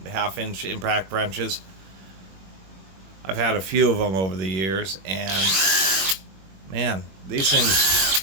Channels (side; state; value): left; late; 21 ms